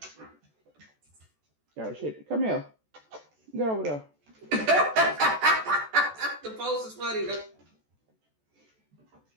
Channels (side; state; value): left; late; 14 ms